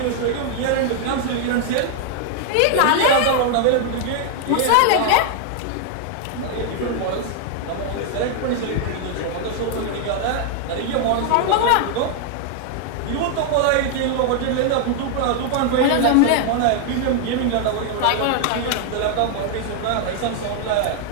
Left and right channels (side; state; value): both; different; correlation 0.00